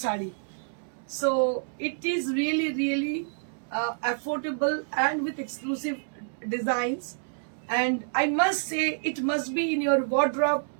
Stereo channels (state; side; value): silent; left; 59 dB below the other